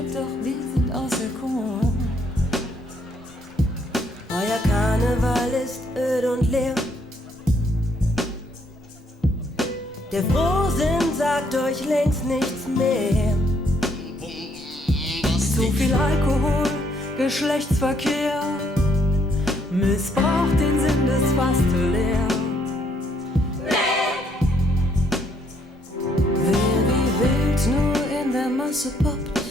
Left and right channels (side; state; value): both; normal; correlation 0.70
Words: doch wir sind auserkoren. Euer Karneval ist öd und leer. Der Frohsinn sagt euch längst nichts mehr. Zu viel Alkohol, Geschlechtsverkehr missbraucht den Sinn des Fastelehr. Wer wie wild nur in der Masse poppt,